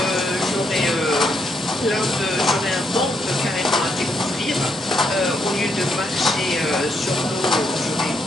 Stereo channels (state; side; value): normal; both; correlation 0.77